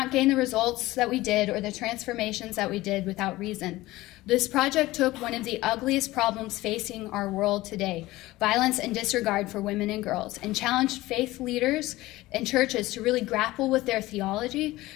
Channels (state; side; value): quieter; right; 18.2 dB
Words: gain the results that we did or the transformations that we did without reason. This project took one of the ugliest problems facing our world today, violence and disregard for women and girls, and challenged faith leaders and churches to really grapple with their theology,